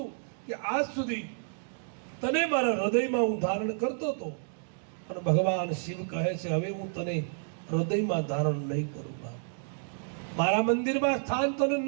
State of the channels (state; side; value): silent; left; digital silence